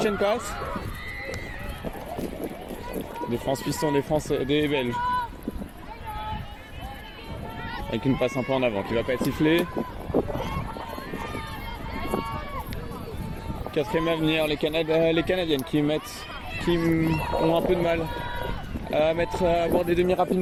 and pass. Défense piston, défense des Belges. Avec une passe un peu en avant qui va pas être sifflée. Quatrième à venir, les Canadiennes qui ont un peu de mal à avoir des demi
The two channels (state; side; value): identical; both; correlation 1.00